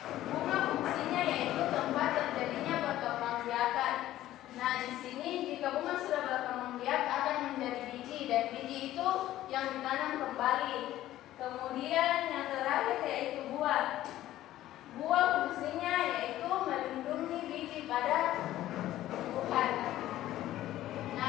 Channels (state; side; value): quieter; right; 14.1 dB